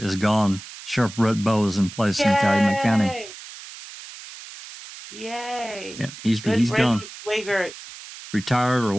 is gone. Sheriff Brett Bowe is in place in Calumet County. Yay! Yeah, he's Good gone. riddance, Wiegert. Retired or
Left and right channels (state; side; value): noise; right; hiss, 15 dB below the sound